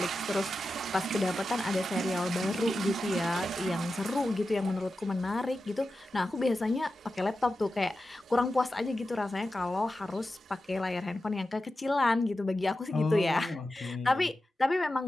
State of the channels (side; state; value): both; normal; correlation 0.92